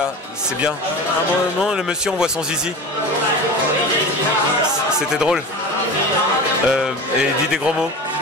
c'est bien. À un moment, le monsieur, on voit son zizi. C'était drôle. Et il dit des gros mots.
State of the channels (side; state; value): both; normal; correlation 0.32